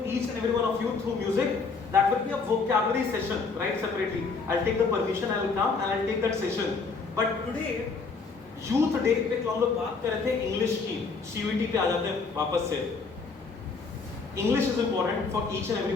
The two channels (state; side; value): quieter; right; 4.6 dB